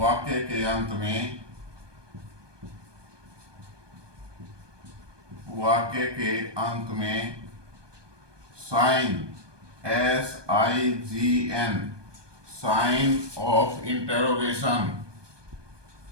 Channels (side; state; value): left; late; 1.2 ms